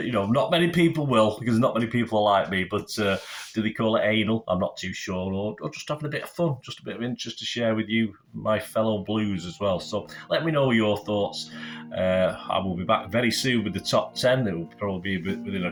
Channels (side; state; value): both; identical; correlation 1.00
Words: not many people will, because not many people are like me, but do they call it anal? I'm not too sure, or just having a bit of fun, just a bit of interest to share with you, my fellow Blues as well. So let me know your thoughts I will be back very soon with the top 10. It will probably be within